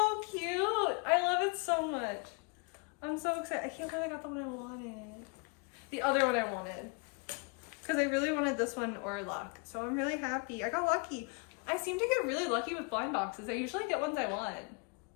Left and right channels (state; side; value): quieter; right; 33.4 dB